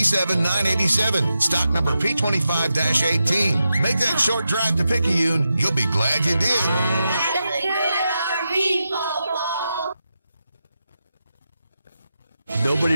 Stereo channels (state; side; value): inverted; both; correlation -0.88